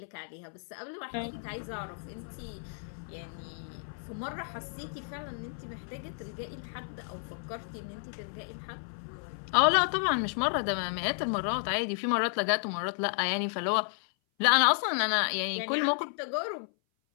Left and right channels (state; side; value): silent; right; 56 dB below the other